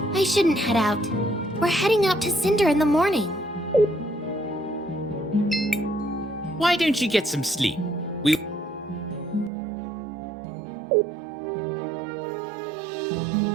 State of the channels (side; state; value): left; drops out; at 9.5 s